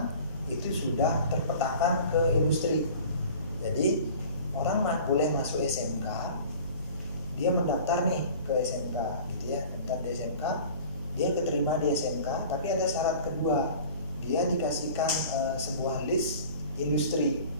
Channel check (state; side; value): inverted; both; correlation -0.43